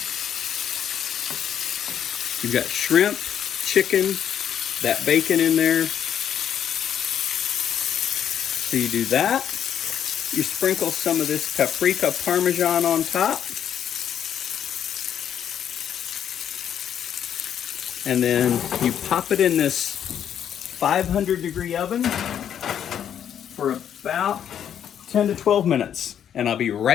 You've got shrimp, chicken, that bacon in there. So you do that. You sprinkle some of this paprika Parmesan on top. And then you pop it in this 500-degree oven for about 10 to 12 minutes. And I'll be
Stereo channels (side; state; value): right; quieter; 9.3 dB